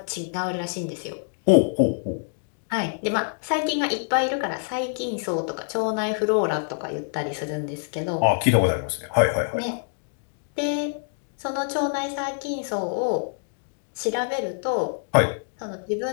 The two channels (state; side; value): silent; right; digital silence